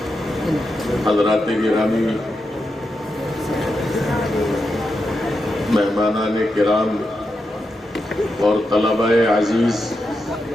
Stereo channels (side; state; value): both; normal; correlation 0.87